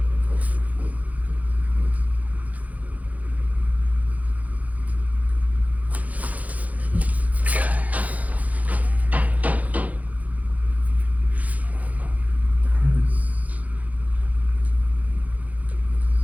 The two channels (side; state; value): left; late; 0.075 ms